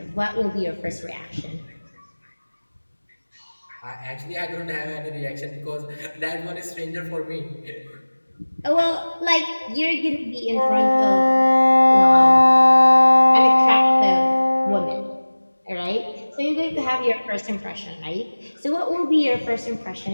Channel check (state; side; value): inverted; both; correlation -1.00